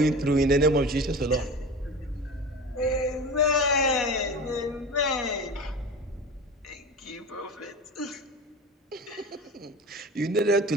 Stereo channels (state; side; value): normal; both; correlation 0.32